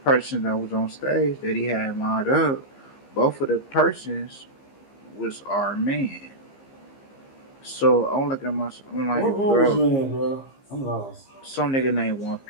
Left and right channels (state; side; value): late; right; 15 ms